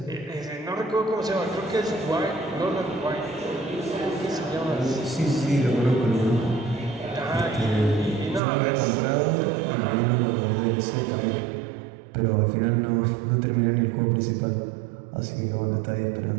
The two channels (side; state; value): left; drops out; at 8.4 s